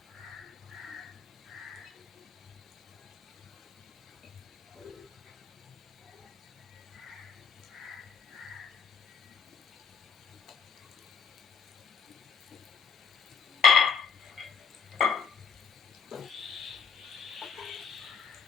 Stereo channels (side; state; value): right; quieter; 6.2 dB